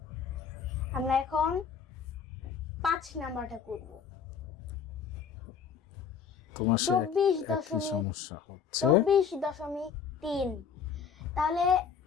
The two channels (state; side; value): quieter; right; 6.8 dB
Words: আমরা এখন ৫ নাম্বারটা করব। ২৪.৩, তাহলে